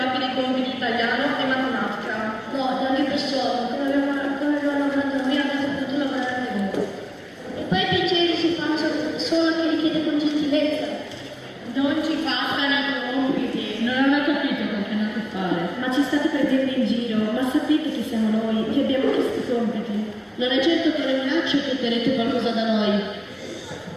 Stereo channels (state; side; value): identical; both; correlation 1.00